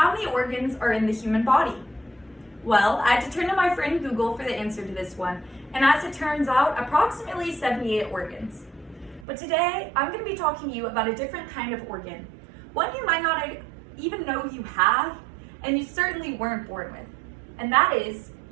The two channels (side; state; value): left; drops out; at 9.2 s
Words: many organs are in the human body? Well, I had to turn to my friend Google for the answer to this one, and as it turns out, approximately 78 organs. But today, I'm going to be talking to you about a different kind of organ, one you might not even know you have, and you certainly weren't born with, and that is